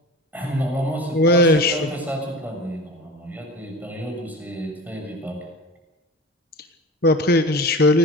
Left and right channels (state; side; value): normal; both; correlation 0.33